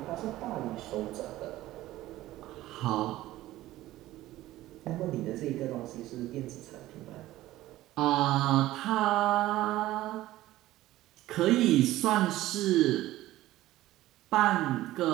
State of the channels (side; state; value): left; quieter; 15.8 dB